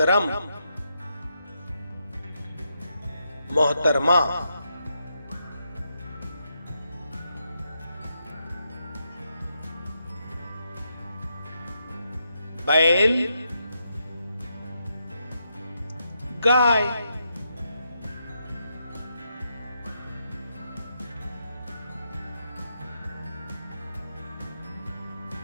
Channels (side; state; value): both; inverted; correlation -0.82